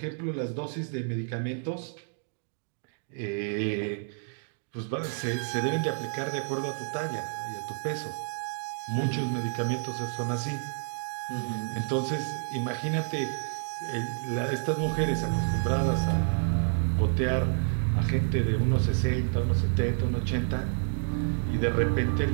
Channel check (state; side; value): silent; left; digital silence